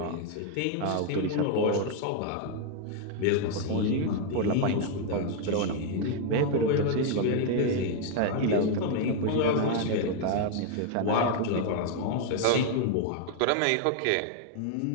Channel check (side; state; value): both; different; correlation 0.00